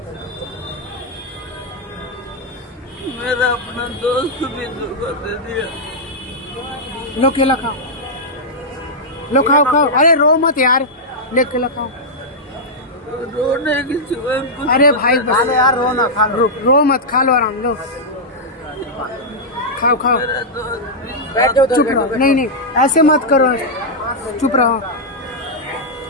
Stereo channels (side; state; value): both; normal; correlation -0.07